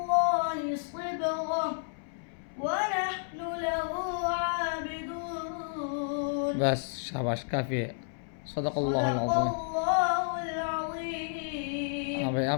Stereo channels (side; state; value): right; silent; 57 dB below the other